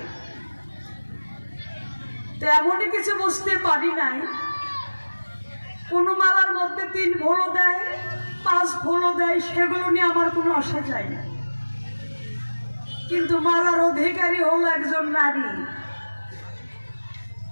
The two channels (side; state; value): both; inverted; correlation -1.00